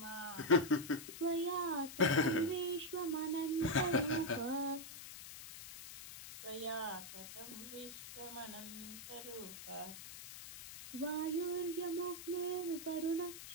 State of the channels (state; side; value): noise; left; hiss, 12 dB below the sound